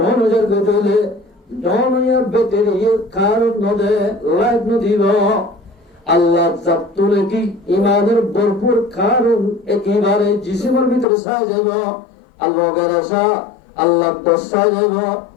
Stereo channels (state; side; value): drops out; right; at 11.1 s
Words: গতলে 9000 battery কারণ নদে light নদিব আল্লাহ জাতুলে কি ইমানের ভরপুর কারণ একেবারে জিসিমের ভিতরে ছায় যাইব আল্লাহ গেরাসা আল্লাহ দসায় যাইব